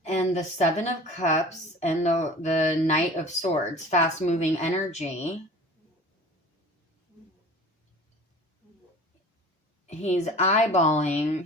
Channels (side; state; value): both; normal; correlation 0.42